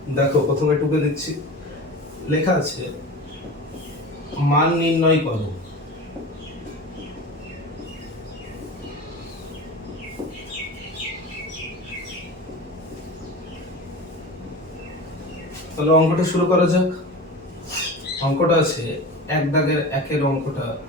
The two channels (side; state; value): both; normal; correlation 0.32